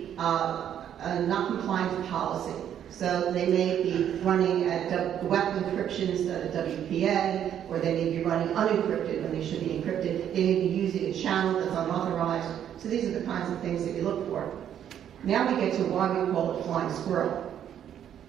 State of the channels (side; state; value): left; quieter; 9.8 dB